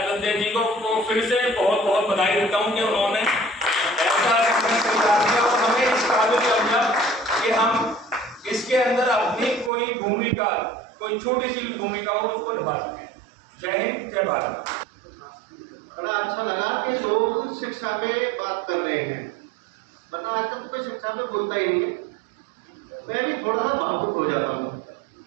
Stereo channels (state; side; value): drops out; left; at 9.7 s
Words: जी को फिर से बहुत बहुत बधाई देता हूं कि उन्होंने ऐसा तैयार किया और हमें इस काबिल समझा कि हम इसके अंदर अपनी कोई भूमिका, कोई छोटी सी भूमिका हो उसको निभा सकें। जय हिंद, जय भारत। बड़ा अच्छा लगा कि लोग शिक्षा पे बात कर रहे हैं, वरना आजकल तो कोई शिक्षा पे बोलता ही नहीं है। मैं भी थोड़ा सा भावुक हो जाता हूँ।